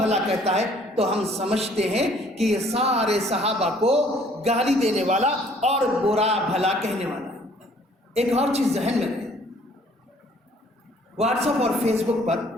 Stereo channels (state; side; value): normal; both; correlation 0.59